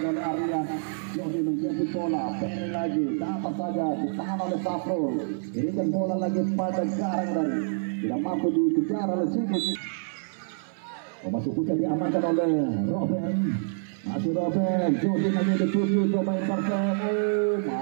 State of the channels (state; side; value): silent; left; 60 dB below the other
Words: oleh Ardian. Jody menjemput bola. Ferry lagi. Dapat saja ditahan oleh Safrul. Berikan bola lagi pada Garang dari. Tidak mampu dikejar oleh Sigit. Masih bisa diamankan oleh Robin. Masih Robin. Jody lagi dituju. Coba intercept.